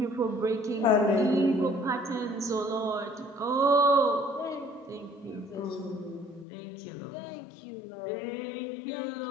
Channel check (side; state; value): right; drops out; at 6.5 s